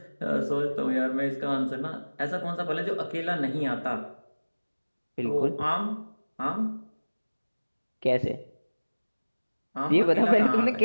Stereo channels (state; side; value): inverted; both; correlation -1.00